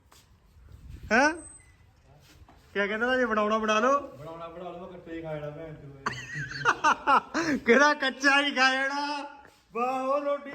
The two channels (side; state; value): both; identical; correlation 1.00